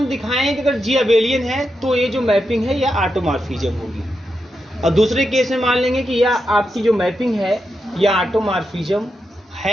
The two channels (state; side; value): normal; both; correlation 0.86